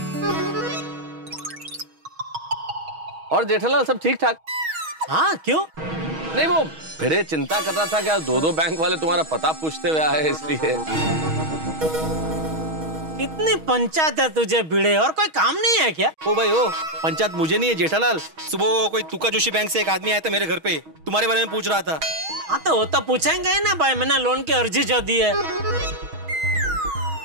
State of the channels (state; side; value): late; left; 6.3 ms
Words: और जेठालाल सब ठीक ठाक? हाँ क्यों? नहीं वो भिड़े चिंता कर रहा था कि दो बैंक वाले तुम्हारा पता पूछते हुए आए, इसलिए। कितनी पंचायत है तुझे भिड़े, और कोई काम नहीं है क्या? ओ भाई ओ, पंचायत मुझे नहीं है जेठालाल। सुबह कोई तुका जोशी बैंक से एक आदमी आया था मेरे घर पे, तुम्हारे बारे में पूछ रहा था। हाँ तो वो तो पूछेंगे ही ना भाई, मैंने लोन की अर्जी जो दी है